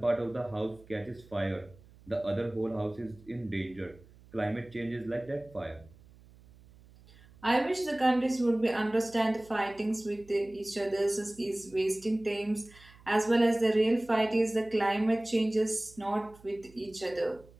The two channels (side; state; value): right; noise; hum, 24 dB below the sound